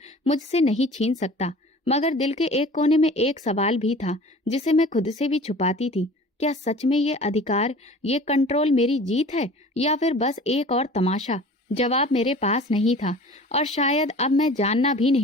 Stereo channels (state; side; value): normal; both; correlation 0.43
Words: मुझसे नहीं छीन सकता। मगर दिल के एक कोने में एक सवाल भी था जिसे मैं खुद से भी छुपाती थी। क्या सच में ये अधिकार, ये कंट्रोल मेरी जीत है या फिर बस एक और तमाशा? जवाब मेरे पास नहीं था और शायद अब मैं जानना भी